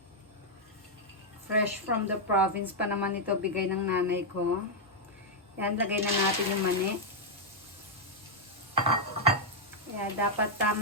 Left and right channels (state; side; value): normal; both; correlation -0.03